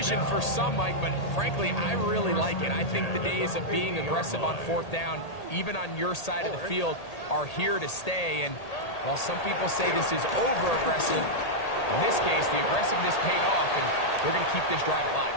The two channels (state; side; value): late; right; 1.8 ms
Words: for some, Mike, but frankly, I really like it. I think the days of being aggressive on 4th down, even on your side of the field, are here to stay. And while some people say this is over-aggressive, in this case, the aggressiveness paid off, and they're going to keep this drive alive.